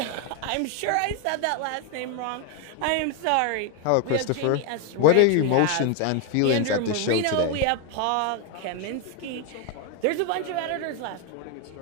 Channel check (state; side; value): different; both; correlation 0.01